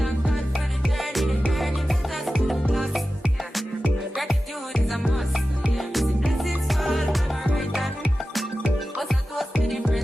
God for the journey to us to the plus. Yeah. Gratitude is a must. Yeah. Blessings all for my right hand. What's that?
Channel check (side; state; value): both; normal; correlation 0.94